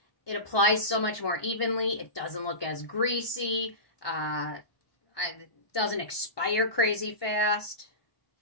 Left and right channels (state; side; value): late; right; 1.2 ms